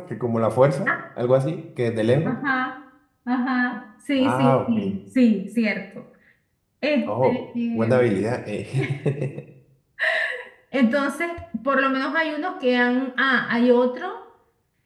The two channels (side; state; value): both; identical; correlation 1.00